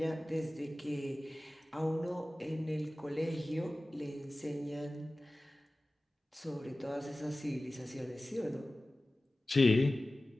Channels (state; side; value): normal; both; correlation 0.97